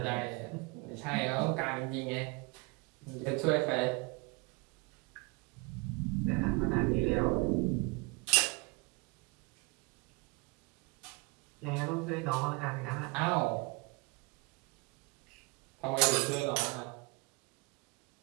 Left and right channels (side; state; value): left; quieter; 28.1 dB